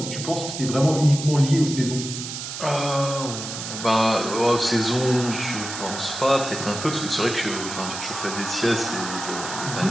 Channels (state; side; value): noise; right; hiss, 7 dB below the sound